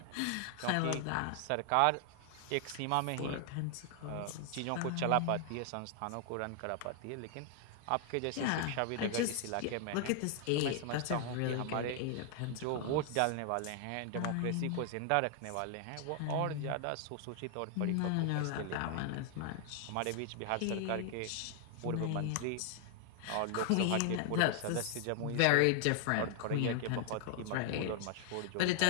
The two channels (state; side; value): different; both; correlation 0.00